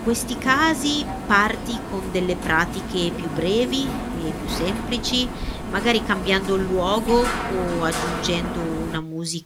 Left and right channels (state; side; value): identical; both; correlation 1.00